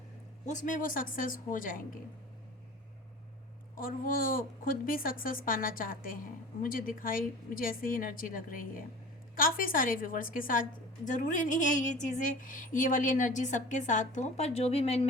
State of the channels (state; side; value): normal; both; correlation 0.39